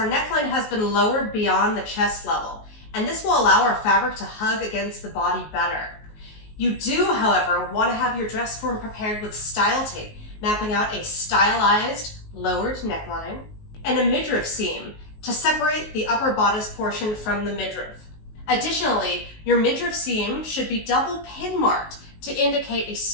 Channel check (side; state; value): right; late; 19 ms